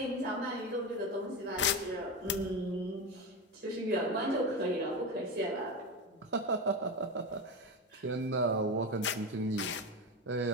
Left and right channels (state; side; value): normal; both; correlation 0.19